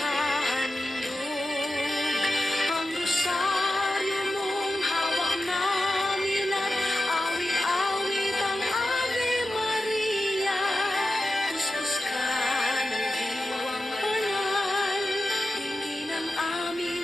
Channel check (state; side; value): normal; both; correlation 0.91